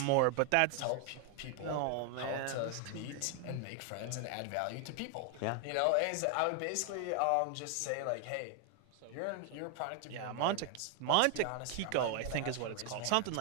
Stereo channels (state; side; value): different; both; correlation 0.01